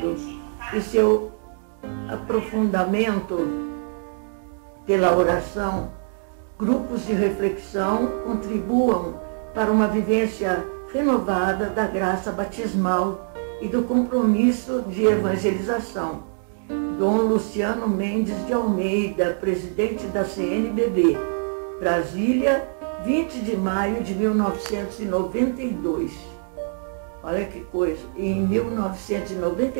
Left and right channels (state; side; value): silent; left; 63 dB below the other